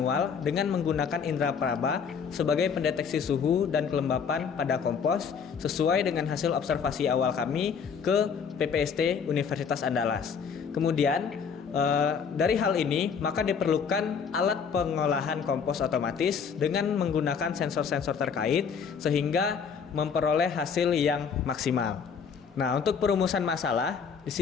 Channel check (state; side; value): quieter; right; 6.4 dB